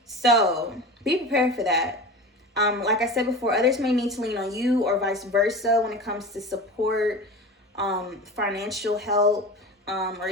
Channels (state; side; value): normal; both; correlation 0.31